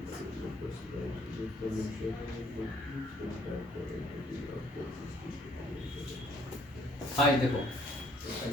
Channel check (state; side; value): normal; both; correlation 0.63